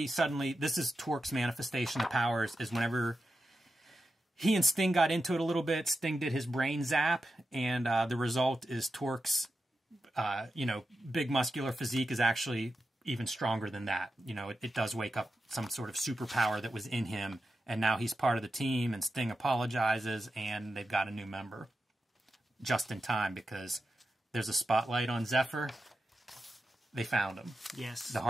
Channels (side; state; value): both; normal; correlation 0.90